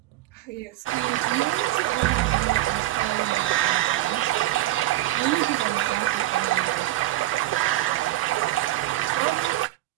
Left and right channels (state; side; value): quieter; left; 15.4 dB